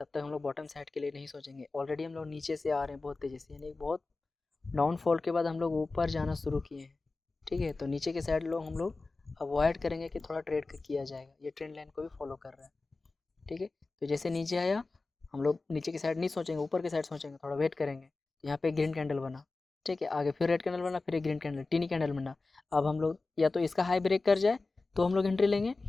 तक हम लोग बॉटम साइड के लिए नहीं सोचेंगे। ऑलरेडी हम लोग नीचे से आ रहे हैं बहुत तेज़ी से, यानी बहुत डाउनफॉल के बाद हम लोग ऊपर जाना शुरू किए हैं, ठीक है। तो नीचे के साइड लोग हम लोग अवॉइड करेंगे कि थोड़ा ट्रेड किया जाएगा, ये ट्रेंड लाइन को भी फॉलो कर रहा है, ठीक है। तो जैसे नीचे आया हम लोग नीचे की साइड नहीं सोचेंगे, ऊपर की साइड सोचेंगे, थोड़ा वेट करेंगे। तो यहाँ पे ग्रीन कैंडल बना, ठीक है, आगे फिर रेड कैंडल बना, फिर एक ग्रीन कैंडल टीनी कैंडल बना। अब हम लोग या तो इसका हाई ब्रेक कर जाए तो हम लोग एंट्री लेंगे,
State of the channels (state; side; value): quieter; right; 3.6 dB